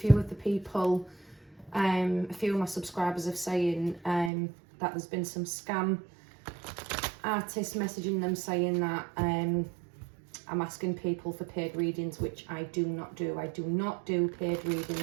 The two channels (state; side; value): drops out; left; at 4.3 s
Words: of the people, a few of my subscribers are saying that there's been some scam artists messaging them saying that I'm asking people for paid readings, which I do not do. I do not do paid